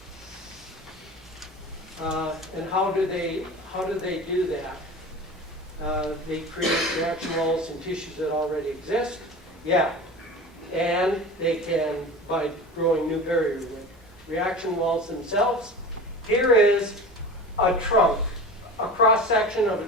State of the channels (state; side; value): normal; both; correlation 0.34